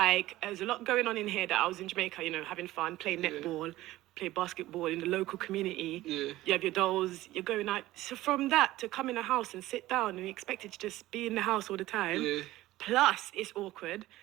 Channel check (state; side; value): quieter; left; 16.4 dB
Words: there's a lot going on in here that I was in Jamaica, you know, having fun, playing netball, play basketball in the local community. Yeah. You have your dolls, you're going out. So from that to come in a house and sit down and be expected to just be in the house all the time, Yeah. plus it's awkward.